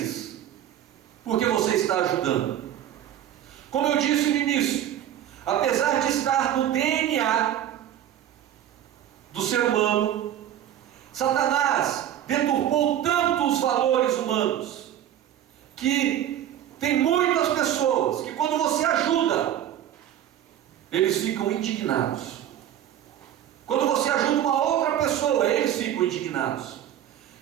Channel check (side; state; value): left; quieter; 11.1 dB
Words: porque você está ajudando. Como eu disse no início, apesar de estar no DNA do ser humano, Satanás deturpou tanto os valores humanos, que tem muitas pessoas que quando você ajuda, eles ficam indignados. Quando você ajuda uma outra pessoa, eles ficam indignados.